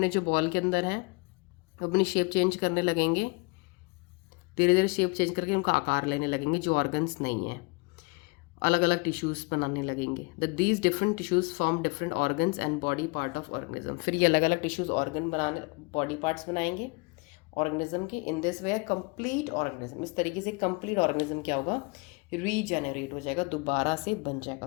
जो बॉल के अंदर हैं अपनी शेप चेंज करने लगेंगे, धीरे धीरे शेप चेंज करके उनका आकार लेने लगेंगे, जो ऑर्गन्स नहीं है, अलग अलग टिश्यूज़ बनाने लगेंगे। The these different tissues form different organs and body part of organism. फिर ये अलग अलग टिश्यूज़ ऑर्गन बनाने, बॉडी पार्ट्स बनाएंगे ऑर्गेनिज्म के। In this way complete organism, इस तरीके से कंप्लीट ऑर्गेनिज्म क्या होगा? रीजेनरेट हो जाएगा, दोबारा से बन जाएगा।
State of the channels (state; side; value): quieter; right; 28.5 dB